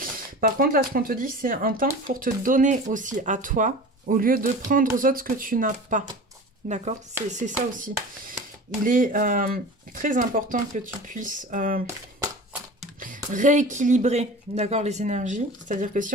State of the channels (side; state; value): both; normal; correlation 0.36